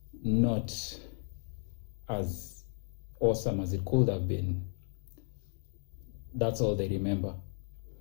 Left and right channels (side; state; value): right; silent; digital silence